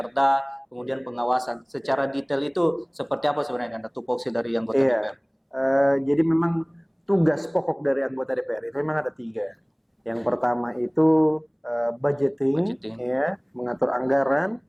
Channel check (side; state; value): both; identical; correlation 1.00